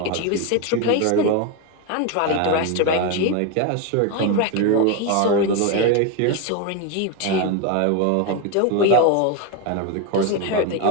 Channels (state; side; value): different; both; correlation 0.02